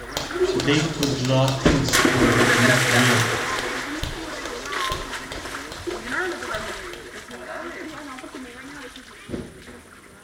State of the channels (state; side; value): identical; both; correlation 1.00